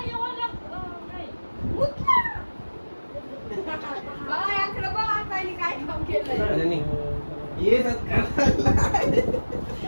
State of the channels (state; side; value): inverted; both; correlation -1.00